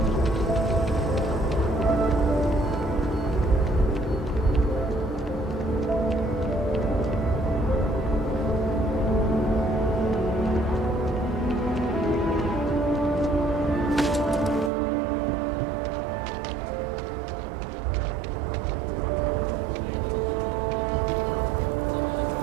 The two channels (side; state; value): left; drops out; at 14.7 s